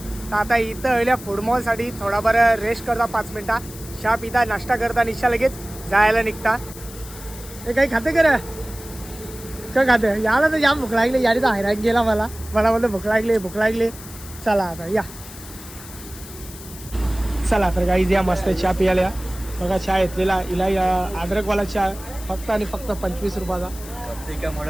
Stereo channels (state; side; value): noise; left; hiss, 16 dB below the sound